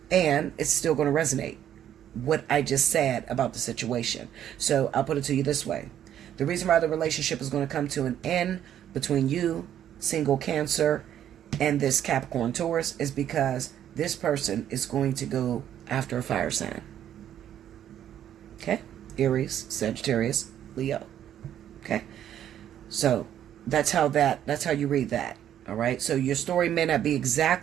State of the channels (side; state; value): left; quieter; 10.6 dB